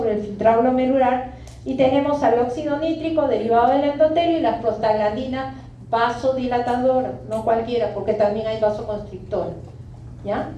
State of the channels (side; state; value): both; identical; correlation 1.00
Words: el filtrado glomerular, y tenemos al óxido nítrico derivado del endotelio y las prostaglandinas vasodilatadoras, no cualquiera, porque también hay vasoconstrictores, ¿ya?